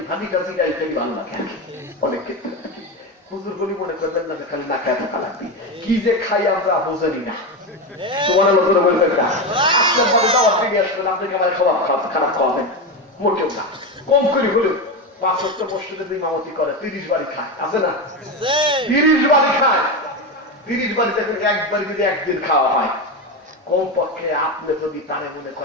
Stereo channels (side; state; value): both; normal; correlation 0.16